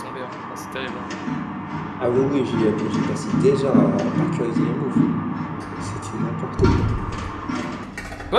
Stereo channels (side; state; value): both; identical; correlation 1.00